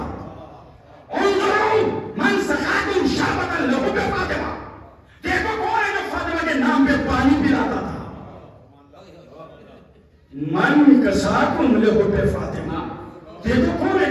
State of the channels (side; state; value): both; identical; correlation 1.00